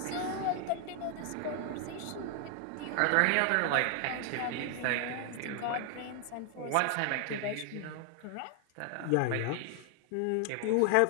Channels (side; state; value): both; different; correlation 0.00